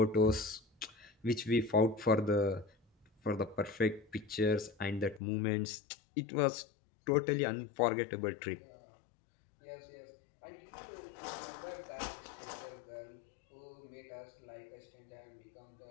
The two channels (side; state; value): right; drops out; at 5.2 s